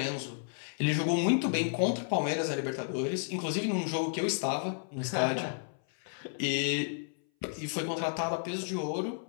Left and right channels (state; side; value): silent; right; 56 dB below the other